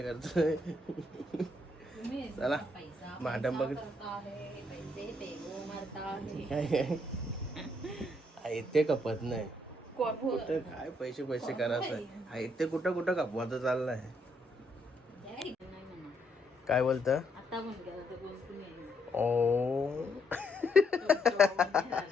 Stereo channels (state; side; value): normal; both; correlation 0.73